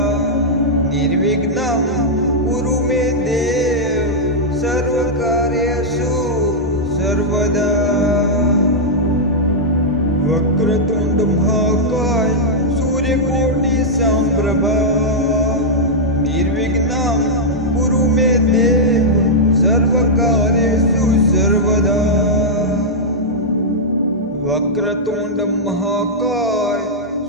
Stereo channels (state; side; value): normal; both; correlation -0.06